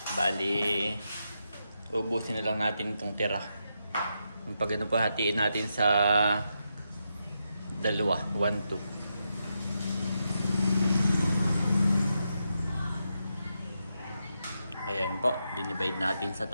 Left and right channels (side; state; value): both; inverted; correlation -0.84